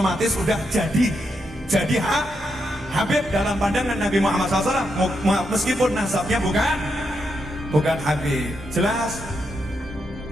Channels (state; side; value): normal; both; correlation 0.82